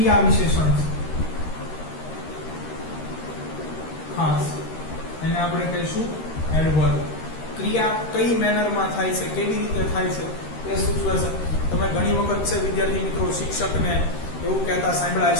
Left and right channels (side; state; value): right; late; 13 ms